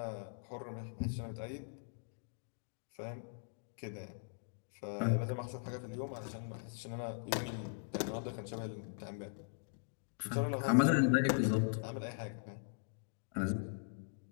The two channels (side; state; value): right; silent; digital silence